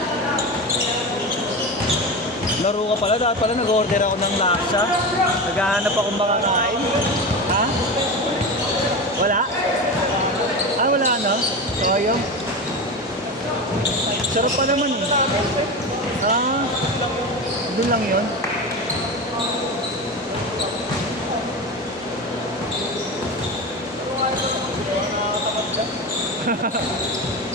Laro ka pala. Dapat pala nag-order ako ng laksa. Naghahanap akong makakain. Ha? Wala? Ah, wala na? Sayang. Sarap pa naman eh. Ah, doon lang yun.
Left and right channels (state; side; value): normal; both; correlation 0.24